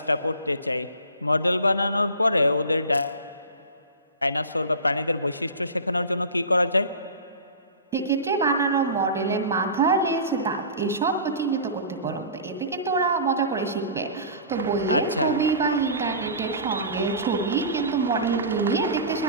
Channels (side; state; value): both; inverted; correlation -0.35